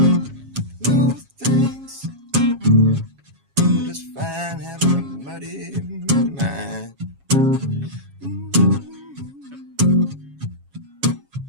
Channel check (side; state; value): left; late; 7.3 ms